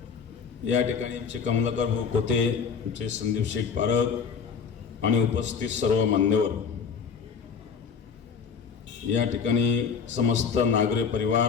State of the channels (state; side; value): quieter; right; 6.4 dB